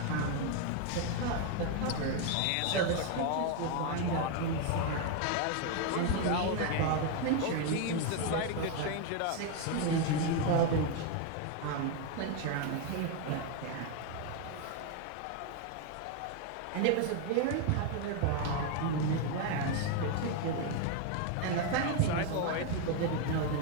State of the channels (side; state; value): both; different; correlation 0.01